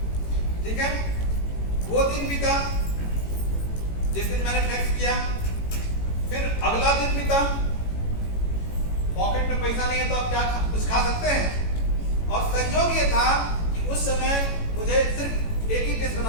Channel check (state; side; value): late; right; 18 ms